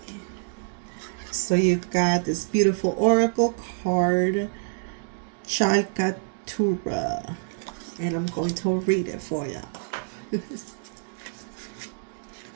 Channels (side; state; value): left; silent; digital silence